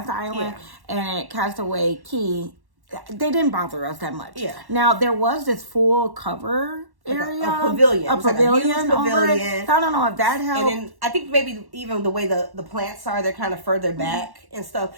island, and at Castaway Cay, they didn't bother us that much. Yeah. Now there was this full cover area, a pavilion, over it. So I don't know if that helped. And then I think maybe even the way the plants are, they're kind of further back and stuff.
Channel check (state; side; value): late; left; 1.1 ms